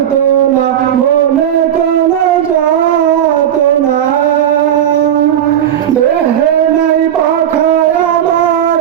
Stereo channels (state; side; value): quieter; left; 10.1 dB